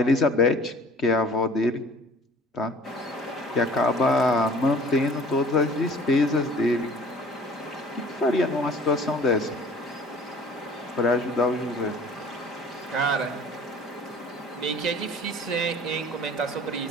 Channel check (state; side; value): normal; both; correlation 0.49